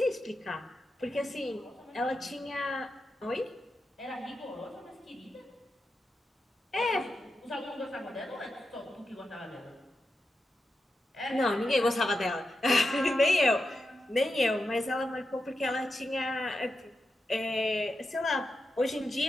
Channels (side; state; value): both; normal; correlation 0.89